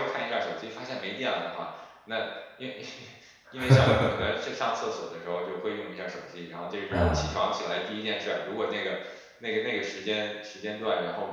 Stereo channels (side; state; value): both; identical; correlation 1.00